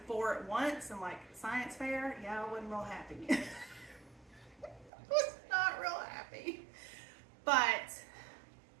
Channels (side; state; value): left; drops out; at 4.9 s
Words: 4 at once and like science fair, yeah, I wasn't real happy. I was not real happy. But